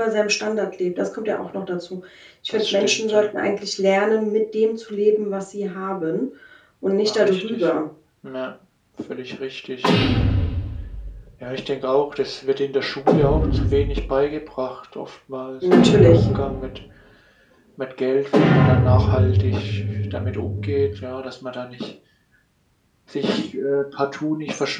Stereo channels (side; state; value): both; identical; correlation 1.00